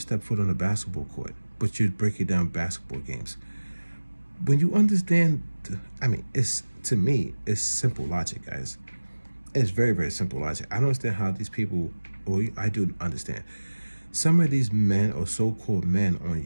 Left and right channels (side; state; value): both; inverted; correlation -1.00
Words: foot on a basketball court, but you're breaking down basketball games. When you understand, I mean, it's to me, it's simple logic, guys. It's very, very simple logic. I don't understand how these people, well, I do understand. Some of these men or so-called men on